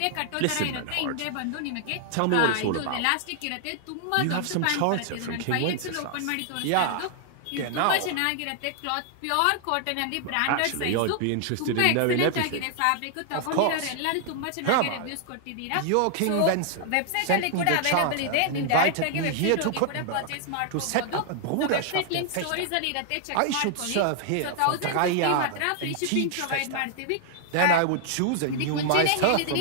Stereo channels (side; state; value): both; different; correlation 0.00